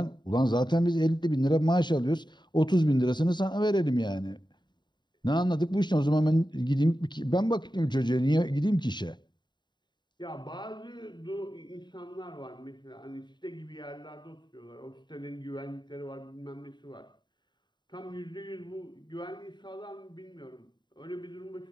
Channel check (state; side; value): late; right; 0.22 ms